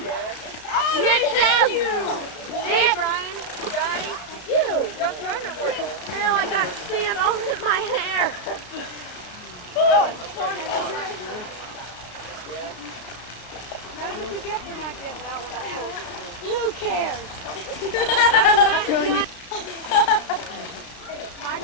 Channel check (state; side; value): late; right; 33 ms